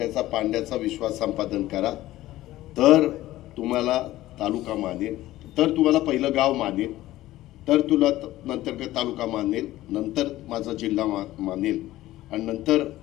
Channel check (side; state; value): right; quieter; 15.8 dB